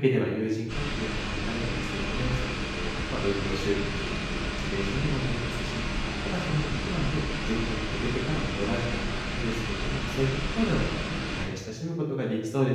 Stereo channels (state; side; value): identical; both; correlation 1.00